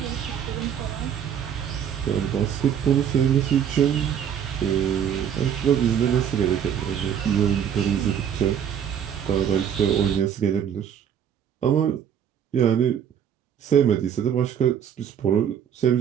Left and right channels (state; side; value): quieter; left; 8.7 dB